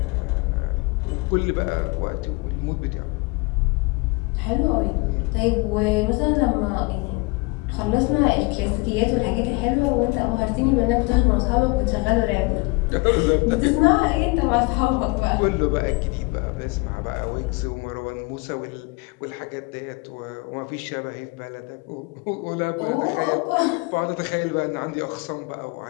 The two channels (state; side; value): quieter; right; 26.5 dB